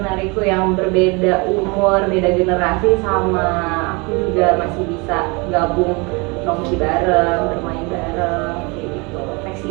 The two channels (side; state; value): left; quieter; 28.4 dB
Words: yang berbeda umur, beda generasi sama aku juga masih bisa gabung nongki bareng, bermain bareng kayak gitu.